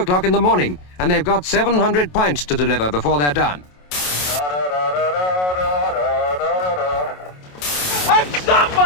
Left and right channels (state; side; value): late; right; 27 ms